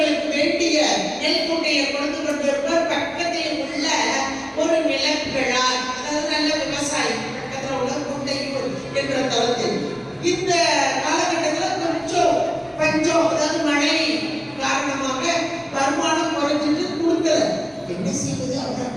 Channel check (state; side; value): identical; both; correlation 1.00